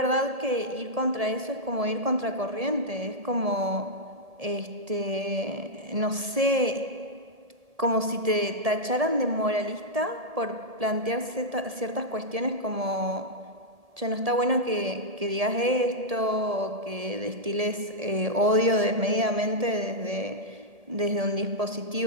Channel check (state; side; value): late; left; 1.7 ms